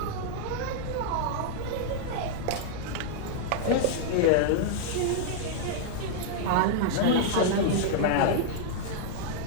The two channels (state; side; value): different; both; correlation -0.01